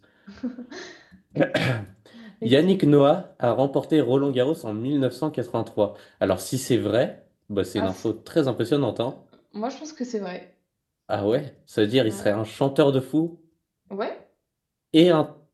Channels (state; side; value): identical; both; correlation 1.00